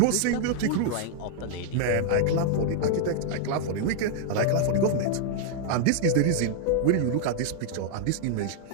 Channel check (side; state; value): both; different; correlation -0.01